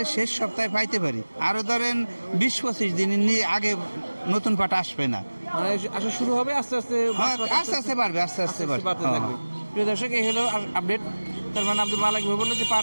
শেষ সপ্তাহে পাইতে পারি, আরো ধরেন 20-25 দিন আগে নতুন পাট আসবে না। মানে আসা শুরু হবে আস্তে আস্তে, হ্যাঁ, বাসপাট আস্তে আস্তে বাড়বে, আস্তে আস্তে বাড়বে। বাড়তে থাকবে। প্রিয় দর্শক, এই হলো আপডেট। তার মানে আব্দুল মালিক ভাই বললো যে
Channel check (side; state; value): both; inverted; correlation -1.00